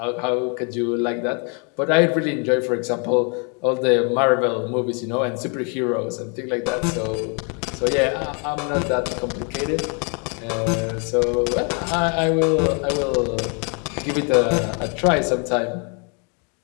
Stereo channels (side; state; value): right; quieter; 36.7 dB